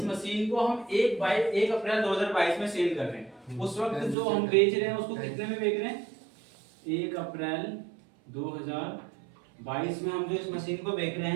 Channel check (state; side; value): drops out; left; at 4.2 s